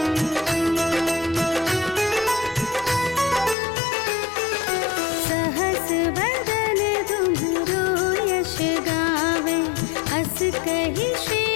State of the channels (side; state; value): right; drops out; at 3.6 s